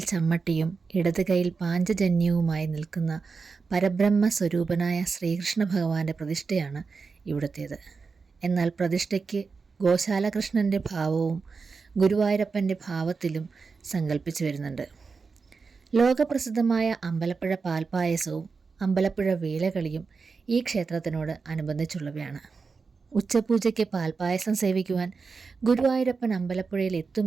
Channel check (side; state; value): left; quieter; 4.8 dB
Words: ചമ്മട്ടിയും ഇടത് കൈയിൽ പാഞ്ചജന്യവുമായി നിൽക്കുന്ന പരബ്രഹ്മ സ്വരൂപനായ ശ്രീകൃഷ്ണ ഭഗവാന്റെ പ്രതിഷ്ഠയാണ് ഇവിടുത്തേത്. എന്നാൽ പ്രതിഷ്ഠയ്ക്ക് ഗോശാലകൃഷ്ണൻ്റെ ഭാവവും ഗുരുവായൂരപ്പൻ്റെ ഭാവത്തിലും സങ്കല്പിച്ചു വരുന്നുണ്ട്. ലോകപ്രസിദ്ധമായ അമ്പലപ്പുഴ പാൽപ്പായസവും അമ്പലപ്പുഴ വേലകളിയും ഈ ക്ഷേത്രത്തിനോട് അനുബന്ധിച്ചുള്ളവയാണ്. ഉച്ചപൂജയ്ക്ക് പാൽപ്പായസം സേവിക്കുവാൻ ഗുരുവായൂരപ്പൻ അമ്പലപ്പുഴയിൽ